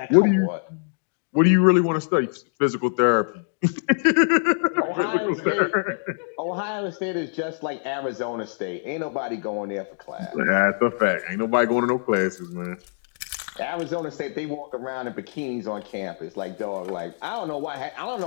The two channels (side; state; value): right; silent; digital silence